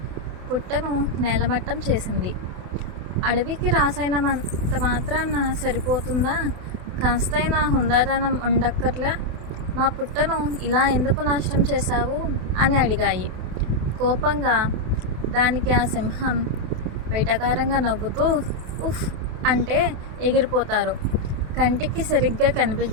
పుట్టను నేలమట్టం చేసింది. అడవికి రాసైనంత మాత్రాన సరిపోతుందా? కాస్తైనా హుందాతనం ఉండక్కర్లే. మా పుట్టను ఇలా ఎందుకు నాశనం చేశావు అని అడిగాయి. కోపంగా దానికి ఆ సింహం వెటకారంగా నవ్వుతూ ఉఫ్ అంటే ఎగిరిపోతారు. కంటికి సరిగ్గా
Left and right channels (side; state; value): left; late; 28 ms